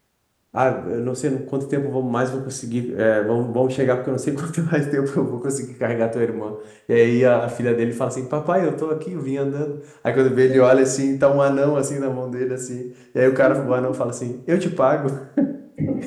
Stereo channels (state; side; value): identical; both; correlation 1.00